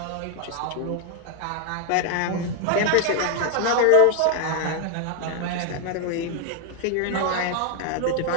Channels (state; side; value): different; both; correlation 0.00